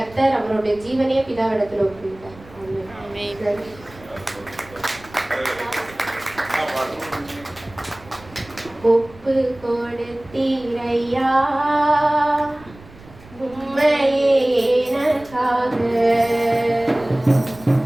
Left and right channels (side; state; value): right; noise; rumble, 22 dB below the sound